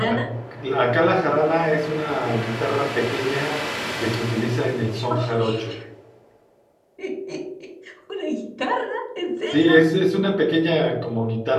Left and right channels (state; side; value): identical; both; correlation 1.00